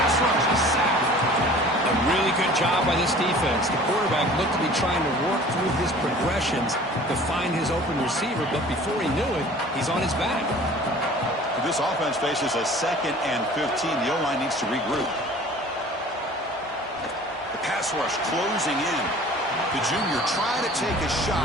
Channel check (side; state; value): both; normal; correlation 0.46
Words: rush. A sack. A really good job by this defense. The quarterback looked to be trying to work through his progressions to find his open receiver, but before he knew it, he's on his back. This offense faces a second and 15. The O-line needs to regroup. The pass pass rush closing in. The junior trying to take a